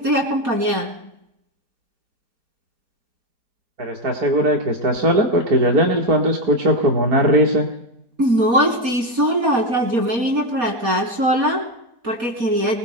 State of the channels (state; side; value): late; left; 4.2 ms